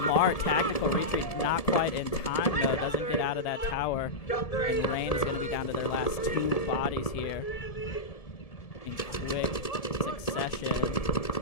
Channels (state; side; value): late; right; 1.7 ms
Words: tactical retreat, not quite in time though, doesn't get out of that tower. And Rain is gonna be down to their last 2 bodies here in quick succession.